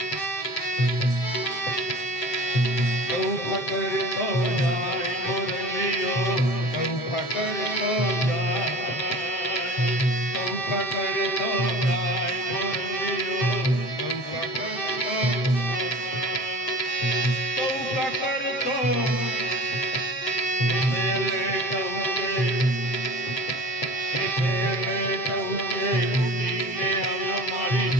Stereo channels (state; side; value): late; right; 7.8 ms